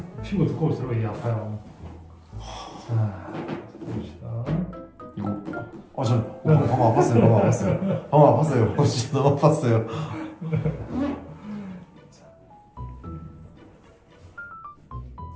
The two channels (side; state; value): both; identical; correlation 1.00